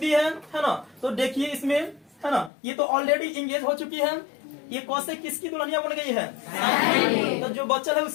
है ना। तो देखिए इसमें है ना, ये तो ऑलरेडी इंगेज हो चुकी है। ये कॉसेक किसकी दुल्हनिया बन गई है, तो जो बच्चा है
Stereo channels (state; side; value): drops out; right; at 2.5 s